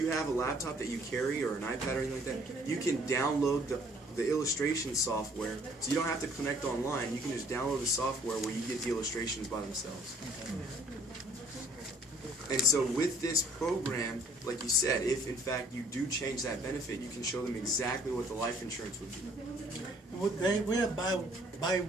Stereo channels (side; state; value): both; normal; correlation 0.58